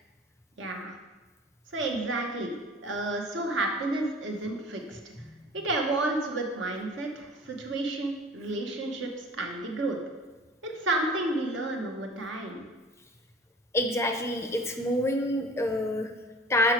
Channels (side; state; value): both; normal; correlation 0.43